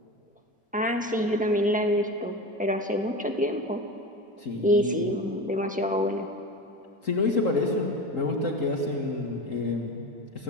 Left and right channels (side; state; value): both; normal; correlation 0.28